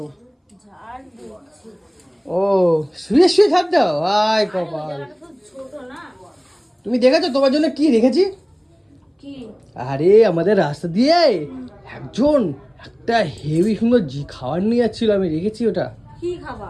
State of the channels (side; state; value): both; identical; correlation 1.00